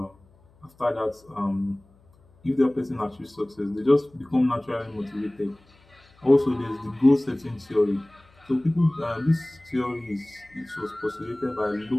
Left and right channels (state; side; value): noise; left; hum, 30 dB below the sound